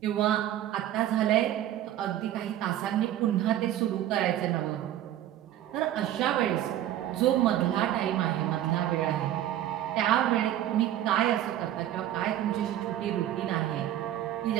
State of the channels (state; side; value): quieter; left; 12.3 dB